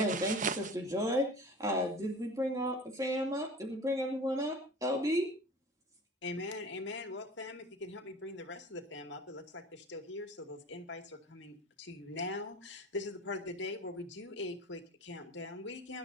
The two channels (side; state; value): both; normal; correlation 0.40